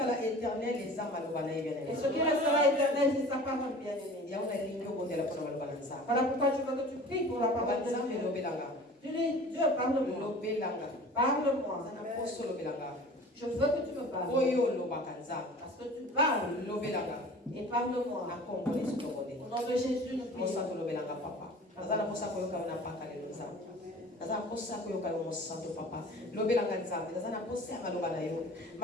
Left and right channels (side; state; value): both; normal; correlation 0.42